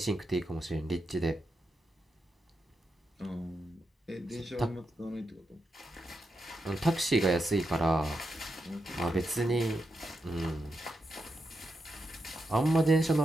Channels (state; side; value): normal; both; correlation 0.86